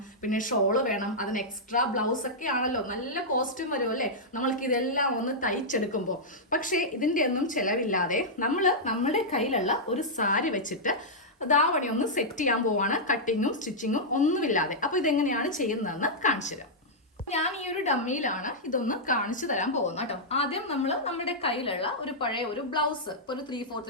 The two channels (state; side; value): normal; both; correlation -0.09